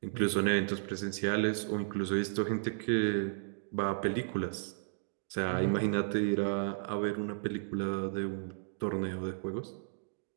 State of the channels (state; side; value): silent; left; digital silence